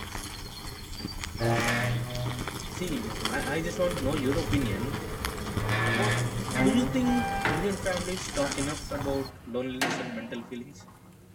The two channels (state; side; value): identical; both; correlation 1.00